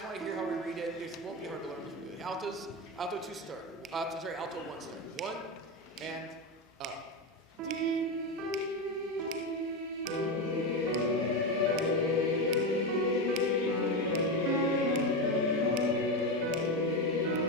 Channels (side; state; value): both; normal; correlation 0.14